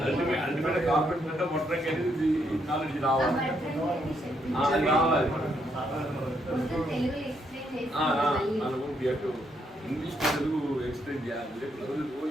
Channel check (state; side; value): normal; both; correlation 0.75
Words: అల్టిమేట్ కార్పెంటర్ అంటే మొట్టంగా అనేది నాలెడ్జ్ రావాలి. ఇంగ్లీష్ తెలుగు ఎక్స్ప్లెయిన్ చేయాలి.